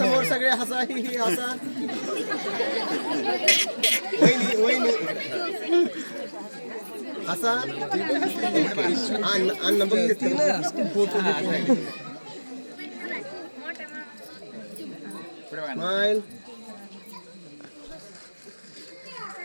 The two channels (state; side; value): inverted; both; correlation -1.00